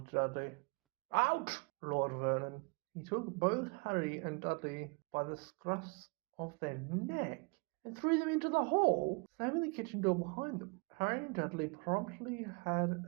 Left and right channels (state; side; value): quieter; left; 30.7 dB